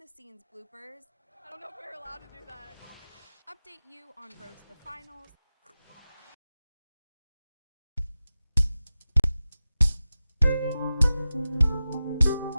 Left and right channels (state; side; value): inverted; both; correlation -0.95